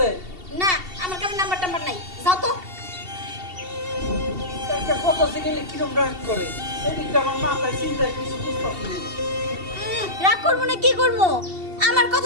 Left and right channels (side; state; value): left; late; 2.7 ms